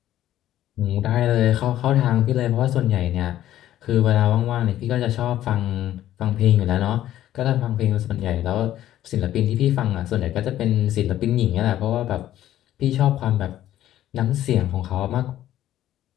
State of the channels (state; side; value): quieter; right; 12.8 dB